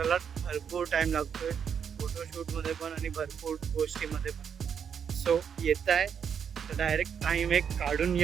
भरपूर टाईम लागतोय, फोटोशूटमध्ये पण आणि भरपूर गोष्टीमध्ये पण. सो येत आहे तर डायरेक्ट टाईम एक काढून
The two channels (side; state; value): left; quieter; 7.5 dB